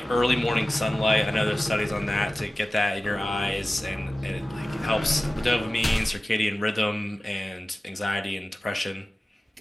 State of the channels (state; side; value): normal; both; correlation 0.96